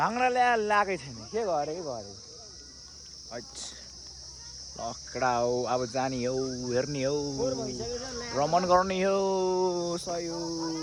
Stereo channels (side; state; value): both; identical; correlation 1.00